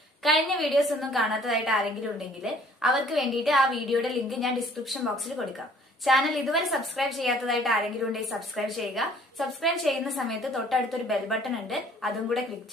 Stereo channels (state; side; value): normal; both; correlation 0.56